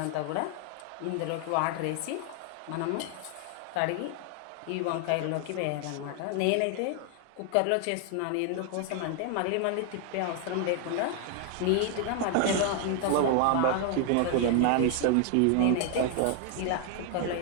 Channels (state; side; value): different; both; correlation 0.00